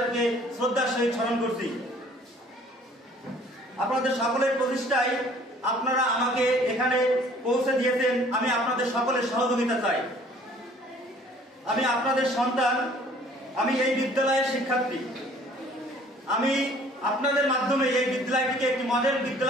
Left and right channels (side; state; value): both; normal; correlation 0.54